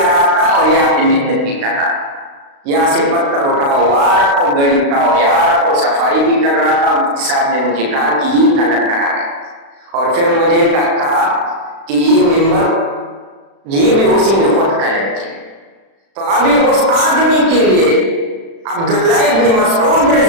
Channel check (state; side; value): late; left; 36 ms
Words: رہا تھا اور یہاں پہ محنت بھی کر رہا تھا، یہاں سے پتھر اٹھاؤ، وہاں رکھو، گڑی اٹھاؤ، یہاں رکھو، صفائی بھی کر رہا تھا۔ مفتی صاحب نے مجھے کہا کہ یہ کلر کرا ہے، اور پھر مجھے کہا کہ یہ ممبر یہ بھی اسی نے خود کلر کی۔ تو ابھی اس آدمی کے لیے عبداللہ ابن مسعود